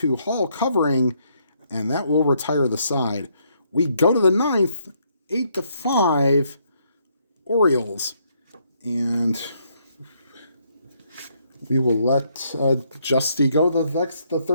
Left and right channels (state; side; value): inverted; both; correlation -0.72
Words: Hall, covering, and that will retire the side. We go to the 9th. 8-5 Orioles. And we will let Justy go the